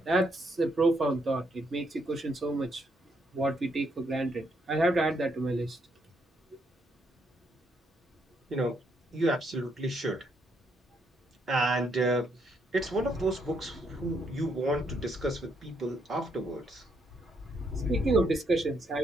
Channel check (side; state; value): both; normal; correlation 0.74